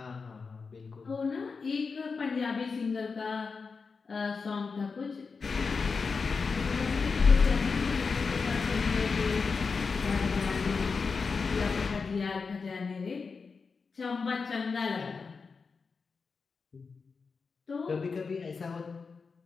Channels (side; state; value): right; quieter; 4.9 dB